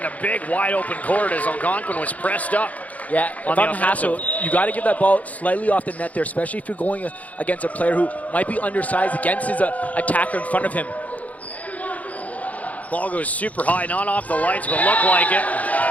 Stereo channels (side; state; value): right; late; 0.072 ms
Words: in a big wide open court as Algonquin was pressed up. Yeah, if I'm Hassel, you got to give that ball slightly off the net there, especially if you're going against a player who might be undersized against his attacker in front of him. Ball goes super high, not off the lights, but looked like it.